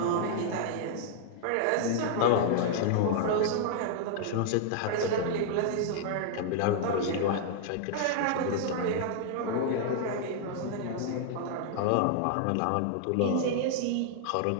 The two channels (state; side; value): different; both; correlation -0.01